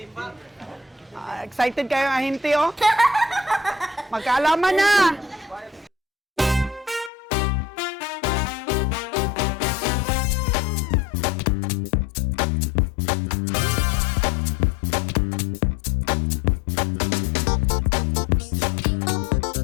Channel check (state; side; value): drops out; right; at 7.1 s